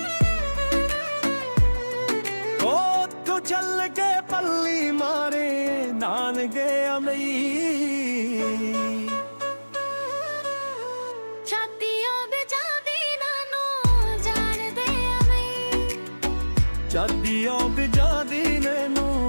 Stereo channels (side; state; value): both; inverted; correlation -1.00